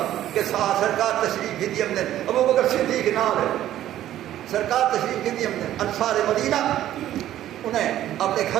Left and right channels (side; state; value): left; quieter; 12.6 dB